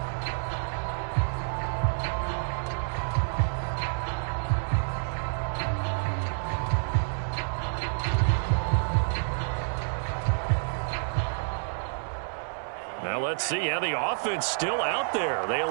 Now let's see how the offense still out there. They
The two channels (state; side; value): silent; left; digital silence